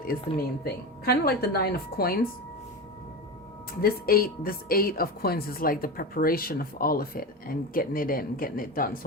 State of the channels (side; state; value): both; normal; correlation 0.23